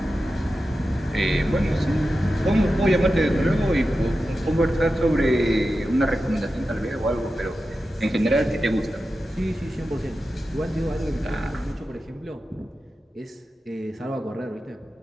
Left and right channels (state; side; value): normal; both; correlation 0.92